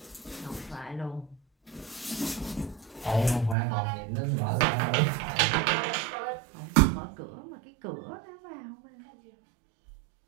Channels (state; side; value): drops out; left; at 3.6 s